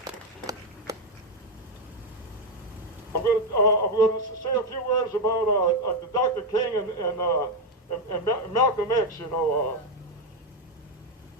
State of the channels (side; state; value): both; normal; correlation 0.06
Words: I'm going to say a few words about Dr. King and Malcolm X.